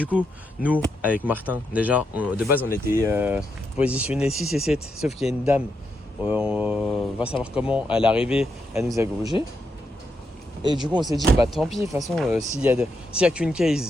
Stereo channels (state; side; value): normal; both; correlation 0.82